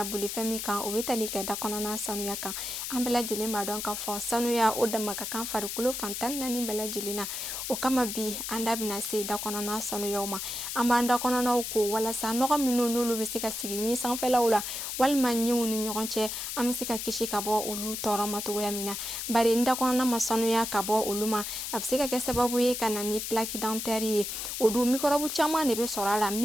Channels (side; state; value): left; noise; hiss, 5 dB below the sound